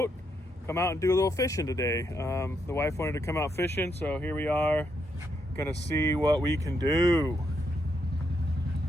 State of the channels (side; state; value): both; normal; correlation 0.79